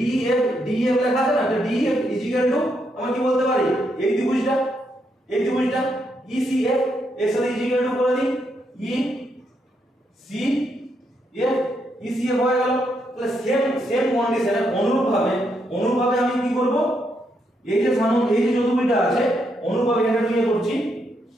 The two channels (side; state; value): both; normal; correlation 0.78